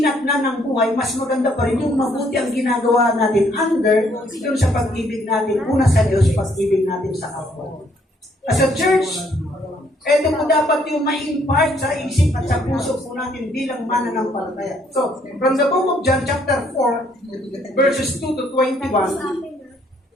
na ng buhay, mas maganda pa rin yung mabuti ang ginagawa natin under yung sa pag-ibig natin, una sa Diyos, pag-ibig natin sa kapwa. As a church, ito po dapat yung ma-impart sa isip at sa puso po natin bilang mananampalataya. So, from the book of John chapter 4, verses 2 to 21,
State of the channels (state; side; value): normal; both; correlation 0.67